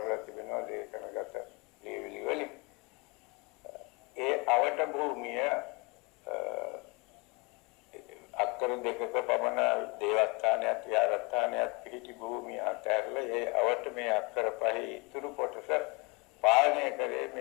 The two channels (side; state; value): right; quieter; 29.5 dB